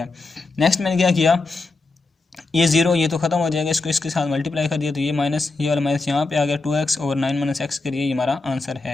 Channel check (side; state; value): right; quieter; 3.5 dB